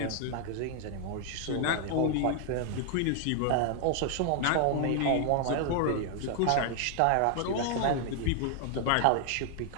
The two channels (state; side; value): different; both; correlation 0.00